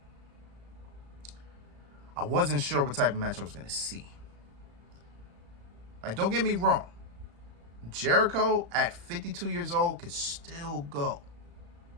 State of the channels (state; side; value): late; left; 35 ms